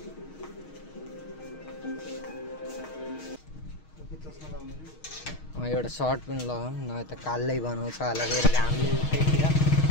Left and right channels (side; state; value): right; late; 6.4 ms